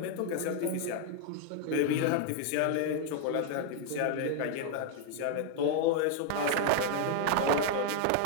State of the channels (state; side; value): different; both; correlation 0.00